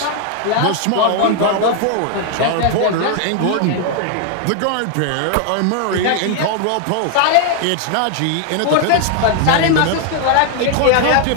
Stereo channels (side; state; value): both; different; correlation 0.00